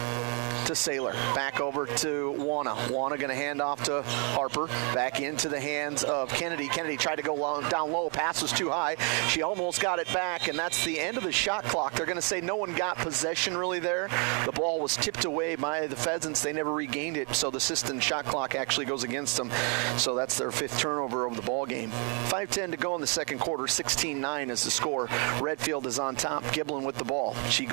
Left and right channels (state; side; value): quieter; left; 37.1 dB